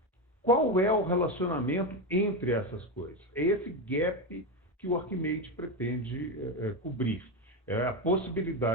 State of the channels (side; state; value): both; normal; correlation 0.13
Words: Qual é o relacionamento entre essas coisas? É esse gap que o Archimate pretende cobrir. É a